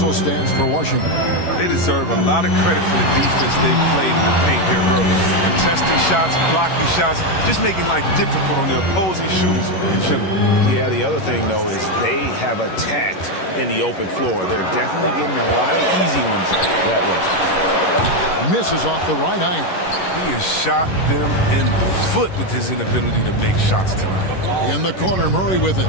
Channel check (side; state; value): right; late; 11 ms